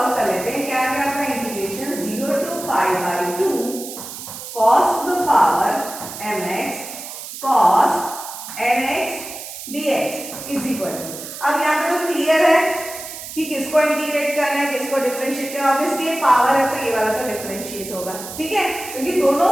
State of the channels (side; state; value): right; noise; hiss, 11 dB below the sound